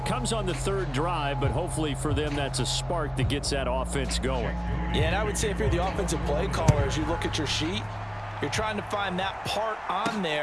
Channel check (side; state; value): both; identical; correlation 1.00